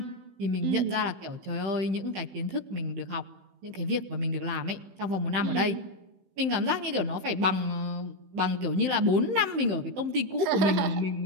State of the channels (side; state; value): left; late; 15 ms